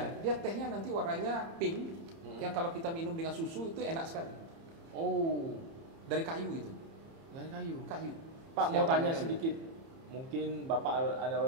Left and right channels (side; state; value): left; late; 30 ms